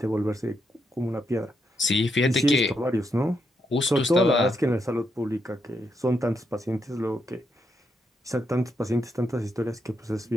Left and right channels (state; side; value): normal; both; correlation 0.81